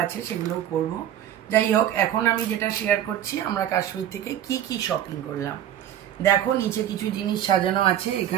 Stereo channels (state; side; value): quieter; left; 11.0 dB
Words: আছে, সেগুলো করব। যাই হোক, এখন আমি যেটা শেয়ার করছি আমরা কাশ্মীর থেকে কি কি শপিং করলাম। দেখো, নিচে কিছু জিনিস সাজানো আছে।